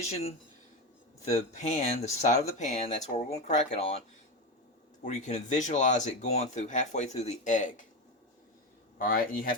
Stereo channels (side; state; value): both; normal; correlation 0.17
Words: the pan, the side of the pan, that's where we're going to crack it on, where you can visualize it going through halfway through the egg. Alright, and you